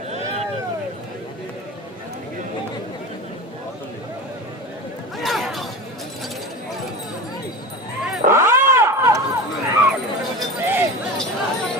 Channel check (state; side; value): normal; both; correlation 0.29